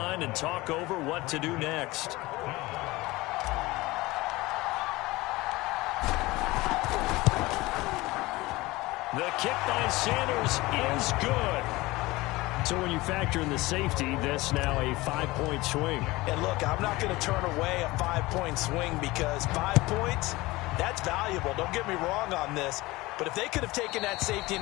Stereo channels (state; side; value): quieter; right; 20.5 dB